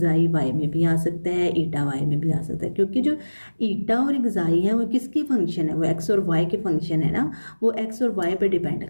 y में भी आ सकता है, ईटा y में भी आ सकता है, क्योंकि जो ईटा और एक्साई है वो किसके फंक्शन है? वो x और y के फंक्शन है ना, वो x और y पे डिपेंड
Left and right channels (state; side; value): inverted; both; correlation -1.00